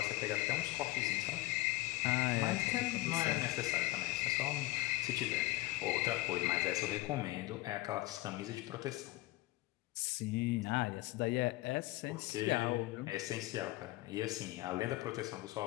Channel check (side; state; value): right; quieter; 19.2 dB